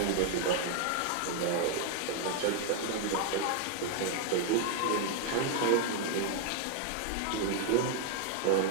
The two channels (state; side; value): different; both; correlation 0.00